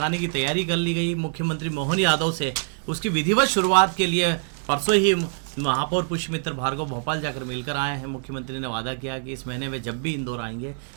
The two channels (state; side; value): silent; left; digital silence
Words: की तैयारी कर ली गई। मुख्यमंत्री मोहन यादव से उसकी विधिवत शुरुआत के लिए परसों ही महापौर पुष्पमित्र भार्गव भोपाल जाकर मिलकर आए हैं। मुख्यमंत्री ने वादा किया कि इस महीने वे जब भी इंदौर आएंगे